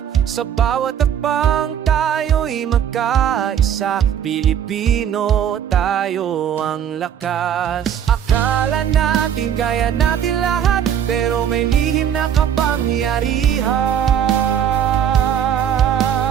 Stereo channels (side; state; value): left; quieter; 9.1 dB